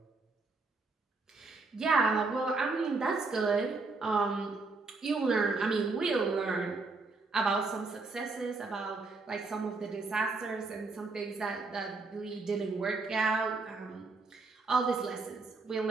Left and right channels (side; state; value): left; quieter; 3.8 dB